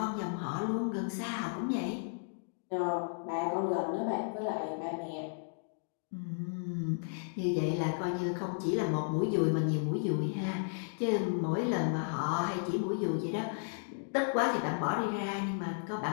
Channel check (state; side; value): silent; right; digital silence